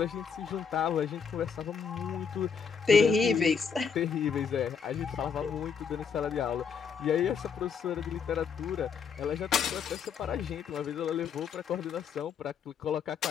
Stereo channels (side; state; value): right; quieter; 6.4 dB